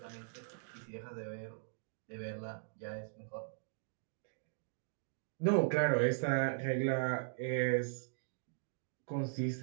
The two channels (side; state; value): left; silent; digital silence